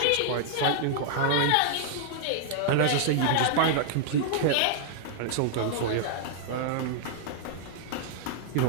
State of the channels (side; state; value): both; different; correlation -0.01